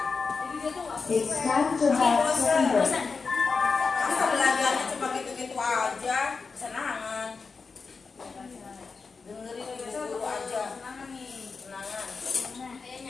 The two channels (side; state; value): right; quieter; 4.7 dB